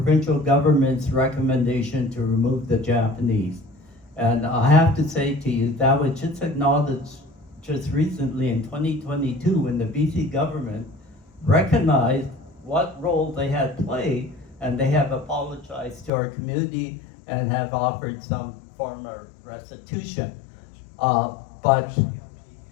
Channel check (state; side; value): drops out; right; at 16.1 s